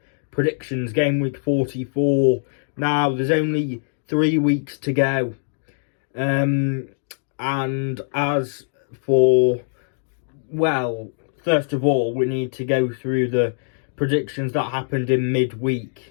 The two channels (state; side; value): silent; right; digital silence